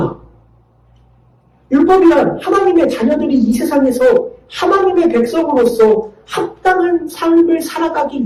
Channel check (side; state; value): both; identical; correlation 1.00